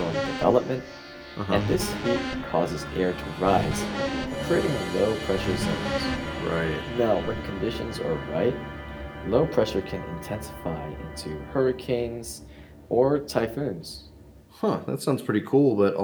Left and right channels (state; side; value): identical; both; correlation 1.00